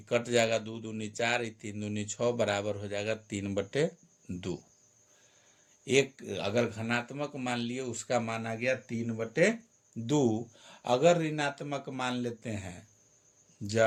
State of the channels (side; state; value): both; identical; correlation 1.00